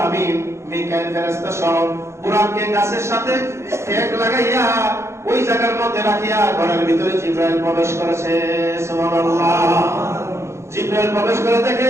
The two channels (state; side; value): late; left; 0.13 ms